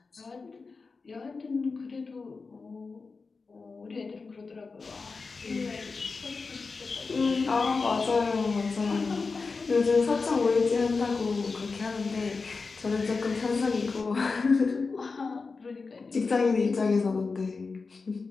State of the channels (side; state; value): right; quieter; 4.4 dB